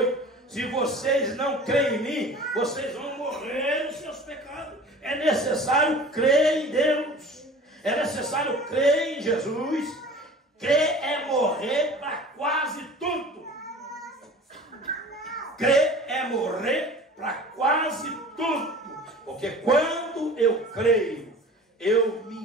se vocês não creem em mim, vocês vão morrer nos seus pecados. É necessário crer em Deus. É necessário crer em Jesus. Crer é morrer para quase tudo. Crer é morrer para quase tudo. Porque quando eu creio, eu me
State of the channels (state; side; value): normal; both; correlation 0.42